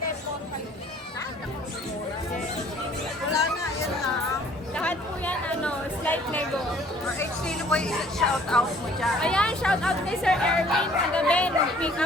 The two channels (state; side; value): normal; both; correlation 0.56